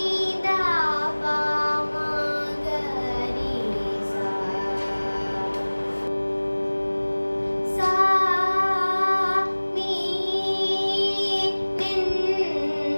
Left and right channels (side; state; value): both; inverted; correlation -1.00